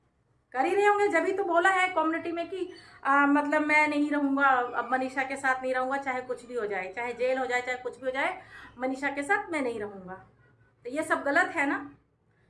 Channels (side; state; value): both; identical; correlation 1.00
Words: कर ही रहे होंगे। जब ही तो बोला है कम्युनिटी में कि मतलब मैं नहीं रहूँगा, अब मनीषा के साथ नहीं रहूँगा, चाहे कुछ भी हो जाए, चाहे जेल हो जाए, चाहे कुछ भी हो जाए, मनीषा के साथ मैं नहीं रहूँगा। तो ये सब गलत है ना,